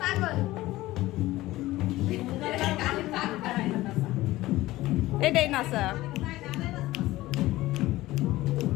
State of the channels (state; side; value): quieter; right; 17.3 dB